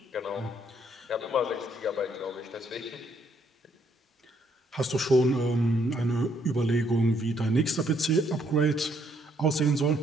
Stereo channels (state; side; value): normal; both; correlation 0.70